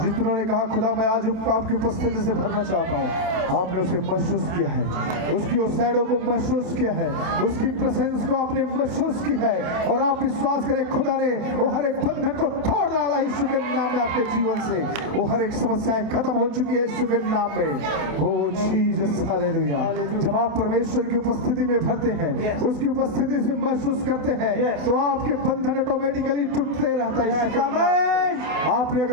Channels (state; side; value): late; left; 28 ms